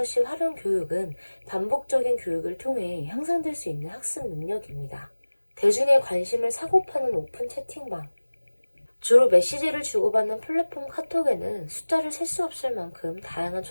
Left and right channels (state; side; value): inverted; both; correlation -1.00